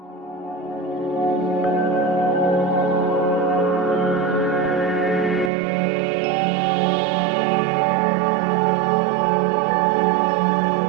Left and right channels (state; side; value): drops out; left; at 5.5 s